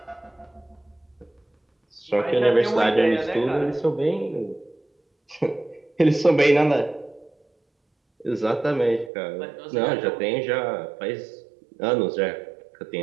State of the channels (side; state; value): left; drops out; at 9.1 s